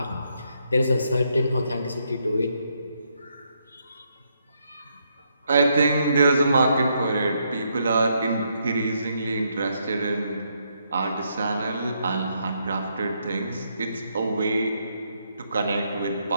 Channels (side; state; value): both; inverted; correlation -0.77